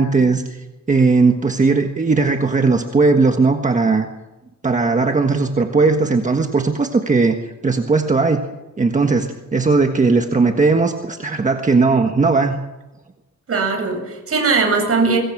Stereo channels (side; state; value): left; quieter; 3.6 dB